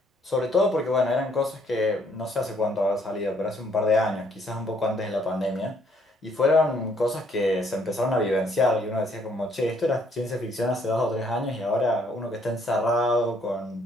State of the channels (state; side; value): normal; both; correlation 0.67